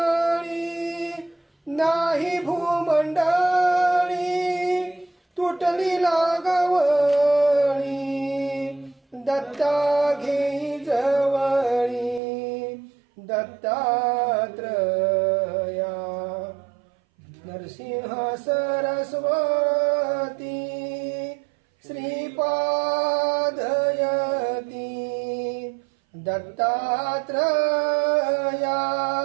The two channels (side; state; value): left; drops out; at 12.2 s